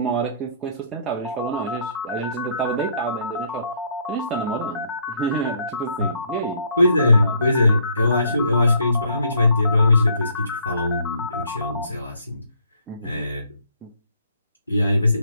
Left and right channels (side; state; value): both; inverted; correlation -0.64